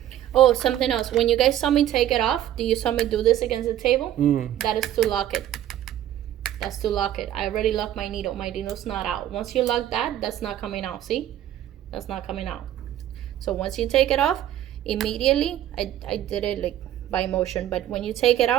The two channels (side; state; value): left; quieter; 12.0 dB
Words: Oh, something else. When you guys saw me take it off, do you saw me do this against the table? That is to lock it. That's to lock it. I already locked my needle. My needle's not out. Once you lock that, that's not coming out. See? That's not coming out. So once you take it off, immediately, I did it like by motion, but when you take it